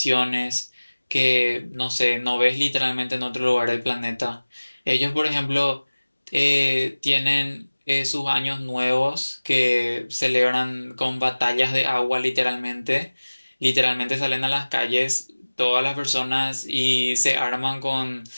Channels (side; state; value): both; inverted; correlation -1.00